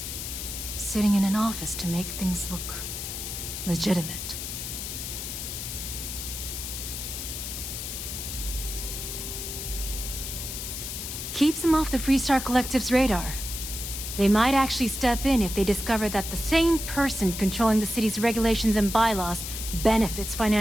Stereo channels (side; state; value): left; noise; hiss, 6 dB below the sound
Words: Sitting in an office to make things look legitimate. Keeps him off the Freestar Collective's radar. They might actually step in if they discover that the same person controlling the city's regulations and bylaws benefits